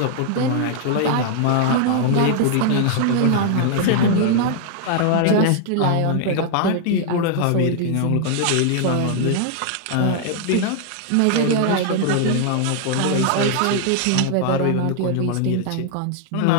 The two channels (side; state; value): both; different; correlation 0.00